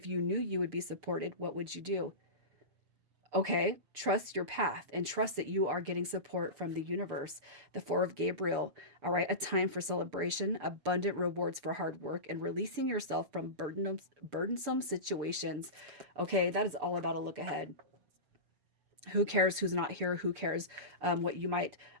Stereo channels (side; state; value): left; late; 6.8 ms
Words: you knew you would be supported, what would you do? Okay, trust your path and trust that you are getting support from the universe. The Four of Gabriel, all right, a time for celebration, abundant rewards for hard work, and releasing yourself from burdensome situations. Okay, that is all about a look ahead. Who cares who's not here? Who cares what you might,